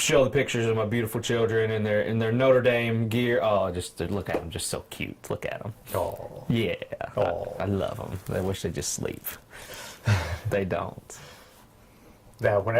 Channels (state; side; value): identical; both; correlation 1.00